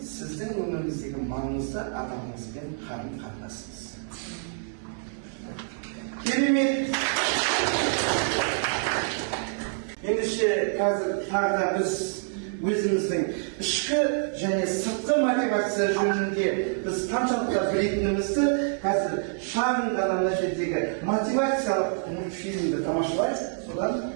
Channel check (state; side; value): silent; left; digital silence